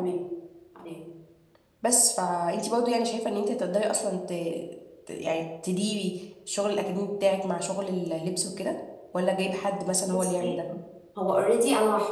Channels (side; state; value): both; identical; correlation 1.00